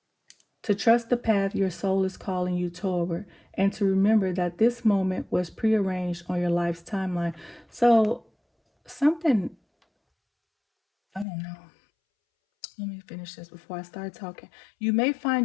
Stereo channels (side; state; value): right; drops out; at 11.2 s